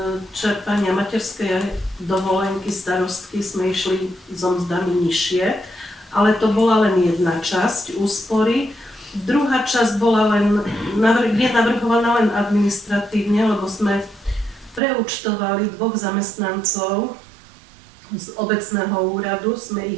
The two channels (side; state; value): left; drops out; at 14.8 s